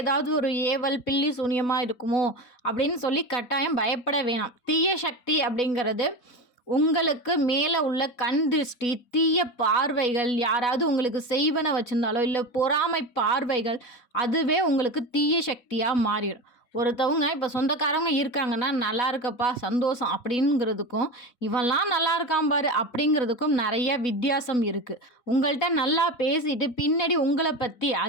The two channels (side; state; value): right; late; 4.1 ms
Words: ஒரு ஏவல் பில்லி சூனியமாக இருக்குமோ அப்படின்னு சொல்லி கட்டாயம் பயப்பட வேணாம். தீய சக்தி அப்படிங்கிறது உங்களுக்கு மேலே உள்ள கண் திருஷ்டி, தீய பார்வைகள், யாராவது உங்களுக்கு செய்வன வச்சுருந்தாலோ இல்லை பொறாமை பார்வைகள், அதுவே உங்களுக்கு தீய சக்தியாக மாறிடும். ஒருத்தவங்க இப்போ சொந்தக்காரவங்க இருக்காங்கன்னா நல்லா இருக்கப்பா சந்தோஷம் அப்படிங்கிறதுக்கும் இவெல்லாம் நல்லா இருக்கான் பாரு அப்படிங்கிறதுக்கும் நிறைய வித்தியாசம் இருக்குது. உங்கள்கிட்ட நல்லா பேசிட்டு பின்னாடி உங்களை பற்றி